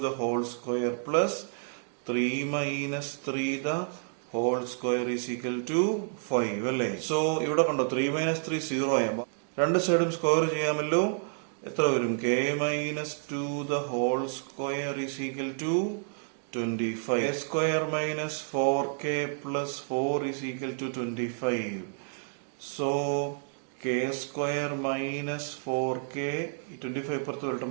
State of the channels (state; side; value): silent; left; digital silence